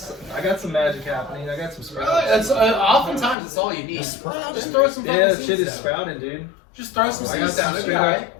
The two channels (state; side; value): drops out; right; at 3.4 s